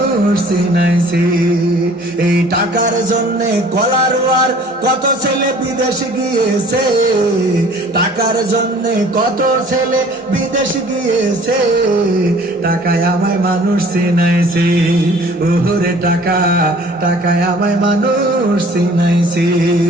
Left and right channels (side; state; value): both; normal; correlation 0.51